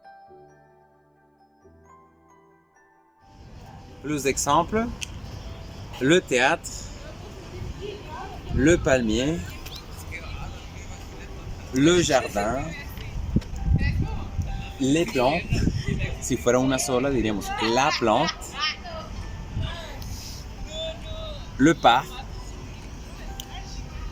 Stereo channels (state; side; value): identical; both; correlation 1.00